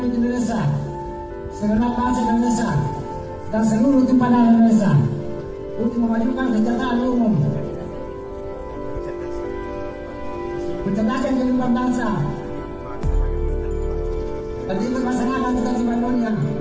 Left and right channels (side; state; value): both; identical; correlation 1.00